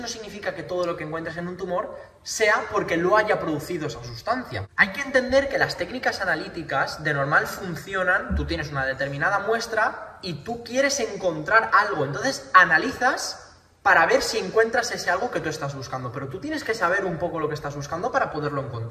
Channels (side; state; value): both; identical; correlation 1.00